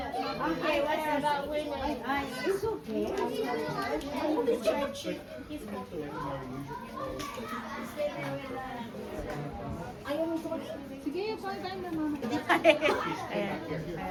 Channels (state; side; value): identical; both; correlation 1.00